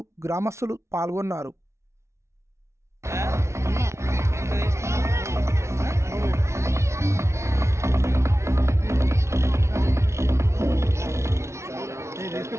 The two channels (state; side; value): late; left; 0.13 ms